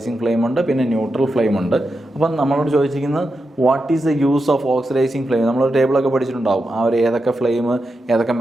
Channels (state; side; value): normal; both; correlation 0.88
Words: ഫ്ലെയിം ഉണ്ട്, പിന്നെ ന്യൂട്രൽ ഫ്ലെയിം ഉണ്ട്. അപ്പം നമ്മളോട് ചോദിച്ചിരിക്കുന്നത് what is the use of oxidising flame. നമ്മളൊരു ടേബിളൊക്കെ പഠിച്ചിട്ടുണ്ടാവും, ആ ഒരു ഏതൊക്കെ ഫ്ലെയിം ഏതൊക്കെ